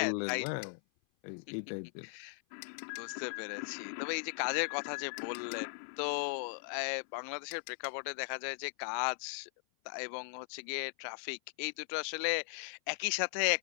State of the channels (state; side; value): silent; right; 52 dB below the other